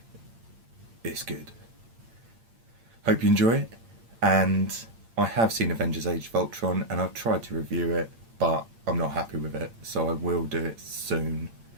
it's good. Hope you enjoy it, and I have seen Avengers Age of Ultron and I've tried to review it, but I'm not happy with it, so I will do it soon,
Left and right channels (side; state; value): left; late; 8.8 ms